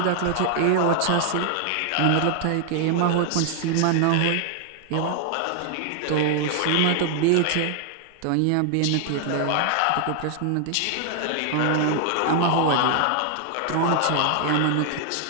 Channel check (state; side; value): different; both; correlation 0.00